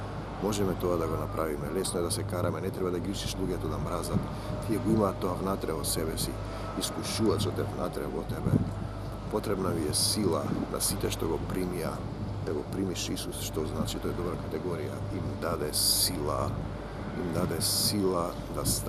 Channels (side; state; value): both; identical; correlation 1.00